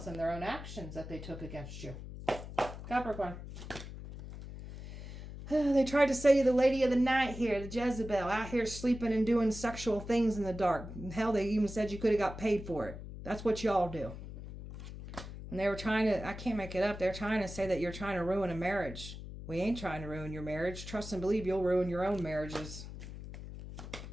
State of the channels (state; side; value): noise; left; hum, 11 dB below the sound